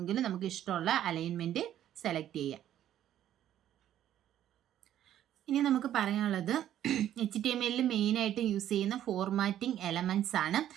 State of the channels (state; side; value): quieter; left; 11.5 dB